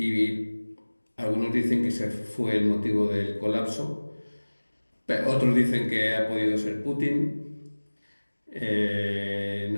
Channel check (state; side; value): inverted; both; correlation -1.00